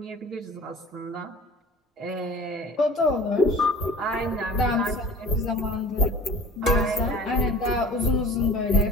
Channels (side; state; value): both; normal; correlation 0.43